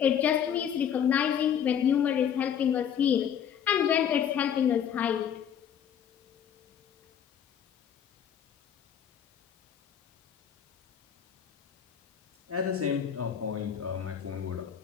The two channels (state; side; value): quieter; right; 8.7 dB